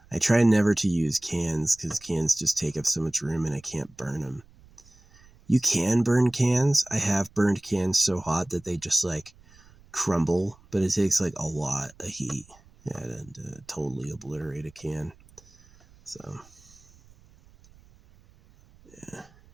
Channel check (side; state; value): right; noise; rumble, 27 dB below the sound